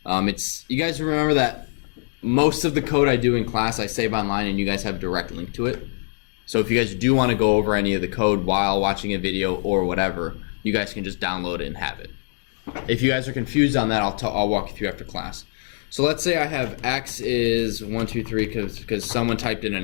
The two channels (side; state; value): right; silent; digital silence